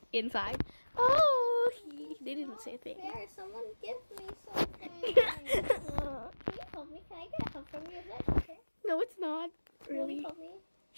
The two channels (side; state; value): both; inverted; correlation -1.00